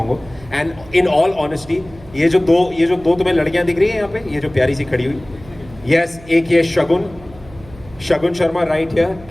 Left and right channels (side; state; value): right; noise; hum, 21 dB below the sound